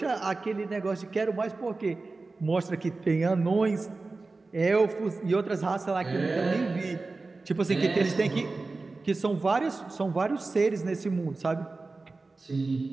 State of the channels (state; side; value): quieter; left; 3.6 dB